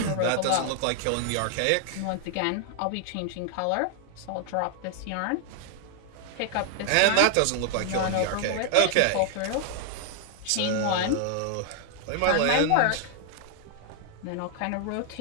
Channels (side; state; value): both; different; correlation 0.00